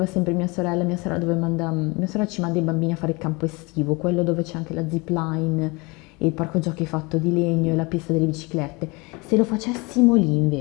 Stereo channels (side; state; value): right; quieter; 26.5 dB